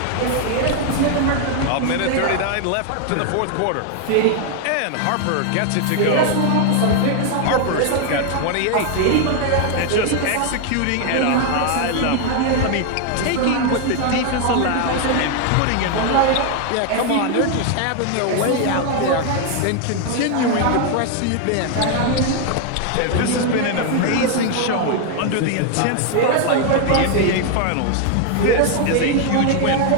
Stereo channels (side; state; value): both; different; correlation 0.00